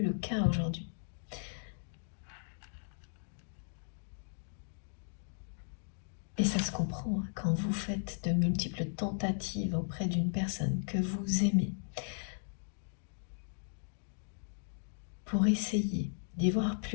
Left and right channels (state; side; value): silent; right; digital silence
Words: le cas aujourd'hui. Et ça se comprend hein, quand vous faites de multiples tentatives auprès d'une personne que vous aimez pour essayer d'y voir